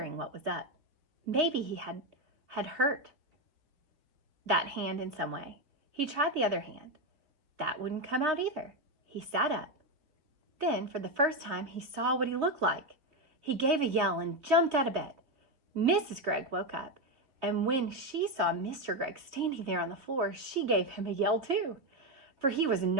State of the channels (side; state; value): left; late; 3.3 ms